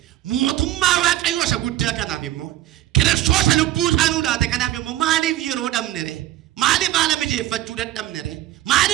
mootummaa waaqayyoo isa guddaa kanaaf immoo Kiristoos lubbuu isaanuu laate kanaaf immoo maaliif yeroo dhabne re maaliif haala mijeeffachuu dadhabne re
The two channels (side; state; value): left; quieter; 14.4 dB